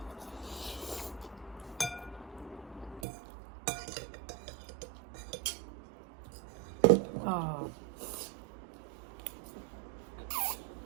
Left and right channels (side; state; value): left; drops out; at 3.1 s